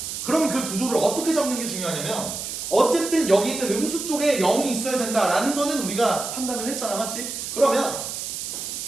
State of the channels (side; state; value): right; noise; hiss, 6 dB below the sound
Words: 그럼 그 구조를 어떻게 잡는 게 중요하냐면 어쨌든 여기 있는 음수 쪽에 0이 있어야 된다라는 거는 우리가 판단을 했잖아. 맞지? 그러면